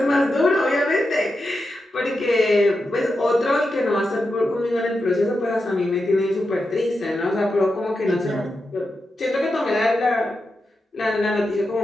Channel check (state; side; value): normal; both; correlation 0.89